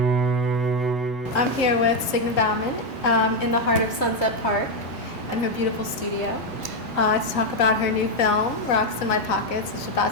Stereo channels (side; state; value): both; normal; correlation 0.04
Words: I'm here with Signe Baumane in the heart of Sunset Park in her beautiful studio to talk about her new film, Rocks in My Pockets, which is